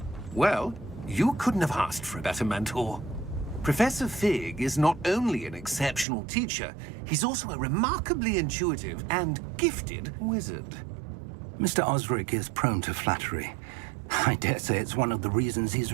Well, you couldn't have asked for a better mentor. Professor Fig is not only an exceptional teacher, he's also a remarkably intuitive and gifted wizard. Mr. Osric is prone to flattery. I dare say it's one of the reasons he's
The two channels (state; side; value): drops out; left; at 6.1 s